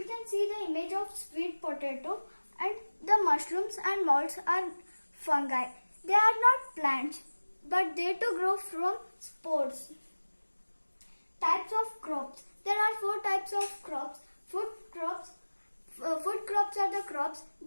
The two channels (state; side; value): inverted; both; correlation -1.00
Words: can see the image of sweet potato and the mushrooms and molds are fungi. They are not plants but they too grow from spores. Types of crops. There are four types of crops. Food crops, Food crops are the crops